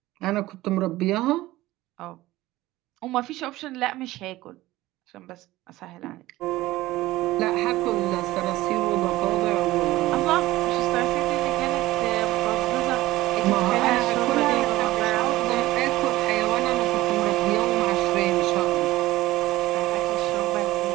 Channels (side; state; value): left; quieter; 17.3 dB